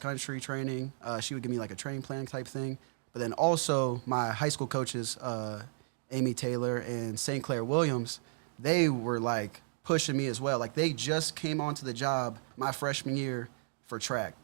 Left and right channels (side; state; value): left; silent; digital silence